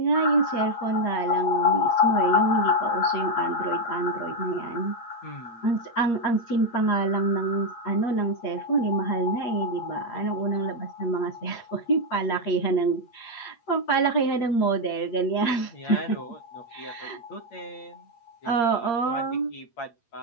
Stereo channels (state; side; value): late; right; 8.6 ms